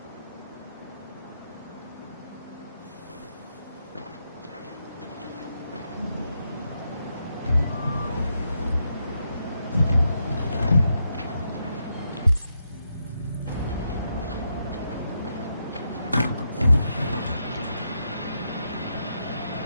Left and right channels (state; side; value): inverted; both; correlation -0.82